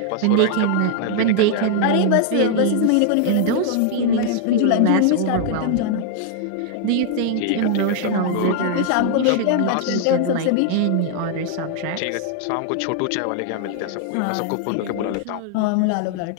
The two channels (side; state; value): both; different; correlation -0.01